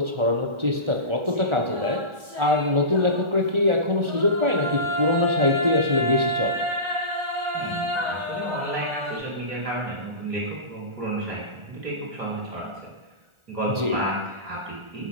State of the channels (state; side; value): late; left; 1.4 ms